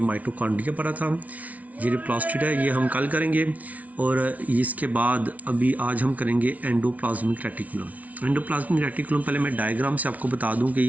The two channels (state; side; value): late; left; 0.070 ms